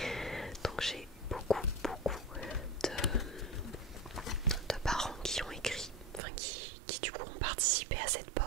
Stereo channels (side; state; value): left; drops out; at 6.2 s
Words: Donc j'ai beaucoup de parents qui ont écrit, enfin qui du coup ont participé à cette